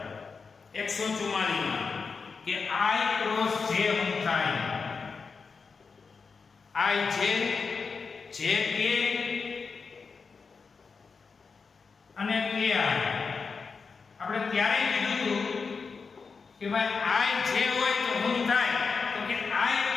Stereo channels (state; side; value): quieter; right; 5.0 dB